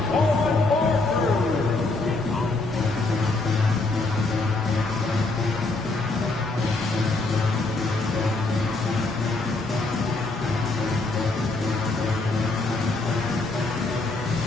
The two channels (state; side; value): quieter; right; 3.3 dB